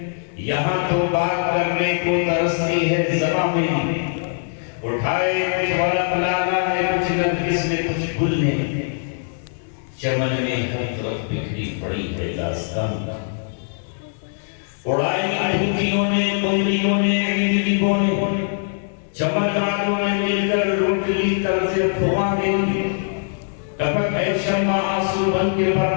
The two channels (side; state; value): right; silent; digital silence